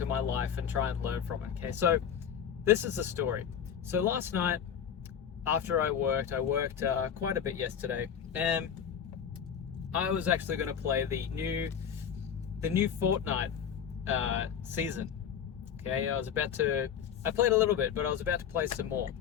my life and try and learn from it, okay? So, this is the story. So last night, after I worked quite a bit yesterday, and I was actually going to play the new Fortnite season. Okay, I played a little bit, but I was about to play some more.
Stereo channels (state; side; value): quieter; right; 8.4 dB